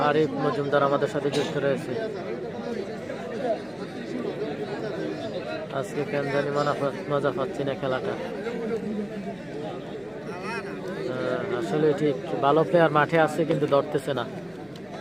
আরিফ মজুমদার আমাদের সাথে যুক্ত রয়েছে। আজকে কেন জানি মজা পাচ্ছি না খেলাটা। আসলে ঠিক ভালো প্লেয়ার মাঠে আছে কিন্তু ধরতেছে না।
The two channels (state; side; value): noise; left; hum, 30 dB below the sound